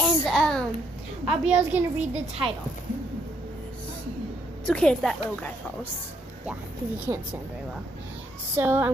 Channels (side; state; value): both; normal; correlation 0.72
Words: And Abiel's gonna read the title. It's okay if that little guy falls. Yeah, because he can't stand very well. So